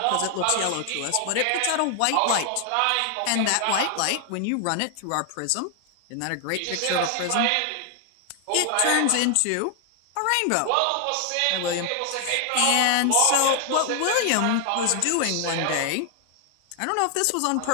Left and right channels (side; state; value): both; different; correlation 0.00